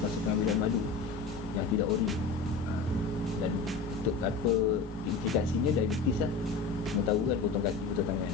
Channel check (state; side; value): quieter; right; 4.5 dB